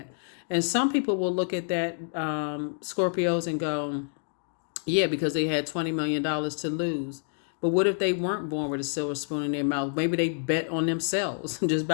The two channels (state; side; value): silent; right; digital silence